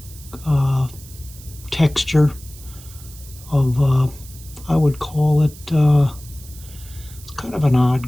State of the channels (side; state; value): right; noise; hiss, 19 dB below the sound